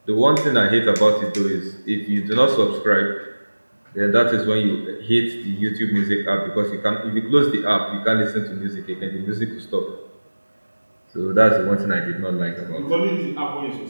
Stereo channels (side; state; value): both; inverted; correlation -1.00